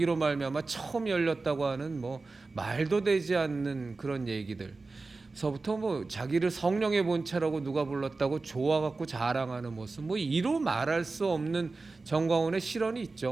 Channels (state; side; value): quieter; left; 3.7 dB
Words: 말미암아 처음 열렸다고 하는 뭐 말도 되지 않는 그런 얘기들. 서부터 뭐 자기를 성령의 본체라고 누가 불렀다고 좋아갖고 자랑하는 모습, 뭐 이로 말할 수 없는 전광훈의 실언이